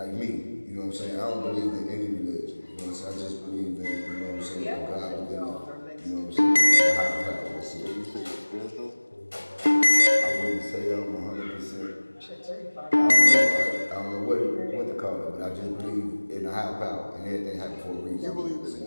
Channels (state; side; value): inverted; both; correlation -1.00